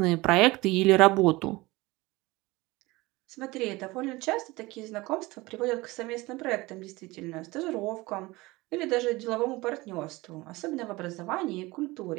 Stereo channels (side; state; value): left; quieter; 21.4 dB